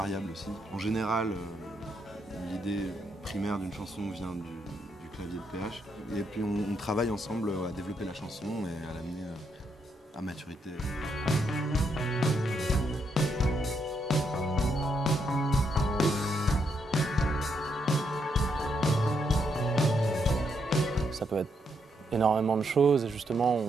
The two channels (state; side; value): normal; both; correlation 0.77